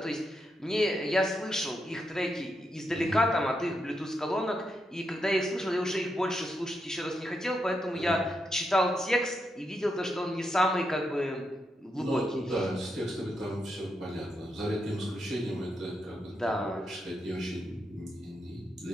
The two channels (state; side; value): normal; both; correlation 0.83